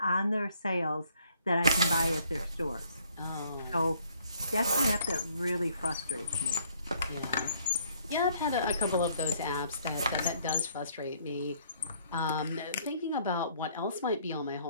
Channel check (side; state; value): both; inverted; correlation -0.64